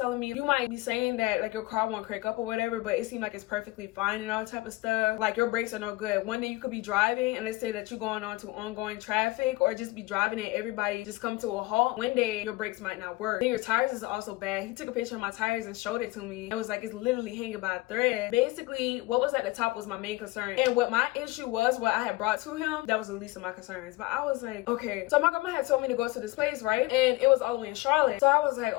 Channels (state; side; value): quieter; right; 20.1 dB